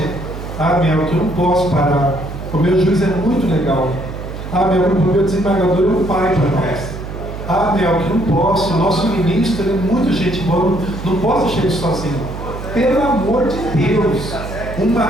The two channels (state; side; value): noise; right; hum, 9 dB below the sound